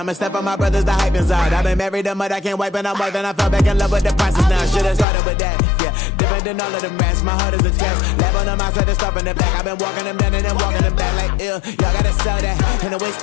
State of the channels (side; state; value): right; drops out; at 5.1 s